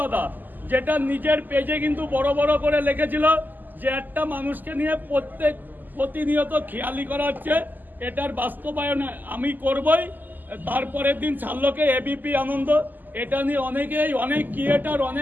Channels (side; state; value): left; late; 0.086 ms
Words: দাদা, যেটা নিজের পেজে কিন্তু বড় বড় করে লিখেছিল যে একটা মানুষকে নিয়ে প্রতিনিয়ত খেয়ালি করা হচ্ছে, এটার বাস্তবায়ন আমি করবই। তারপরের দিন ছাড়লোকে এবিপি আনন্দ, এটা নিয়ে অনেকেই, অনেক ক্রিয়েটার,